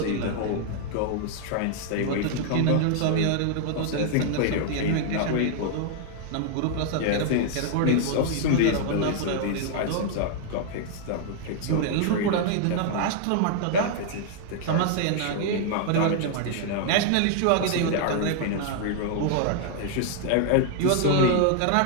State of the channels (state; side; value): different; both; correlation 0.00